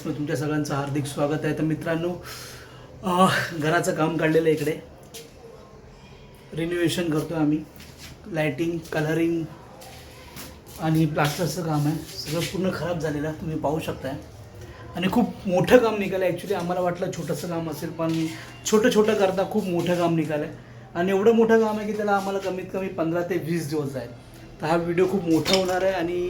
तुमच्या सगळ्यांचं हार्दिक स्वागत आहे. तर मित्रांनो, घराचं काम काढलेलं आहे. इकडे रिनोव्हेशन करतो आहे आम्ही. लाईटिंग, कलरिंग आणि प्लास्टरचं काम आहे. सगळं पूर्ण खराब झालेलं तुम्ही पाहू शकताय. आणि खूप मोठं काम निघालं. ॲक्च्युली आम्हाला वाटलं छोटंसं काम असेल, पण छोटं करता खूप मोठं काम निघालं आहे. आणि एवढं मोठं काम आहे की त्याला आम्हाला कमीत कमी 15 ते 20 दिवस जाईल. तर हा व्हिडिओ खूप मोठा होणार आहे.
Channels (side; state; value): both; identical; correlation 1.00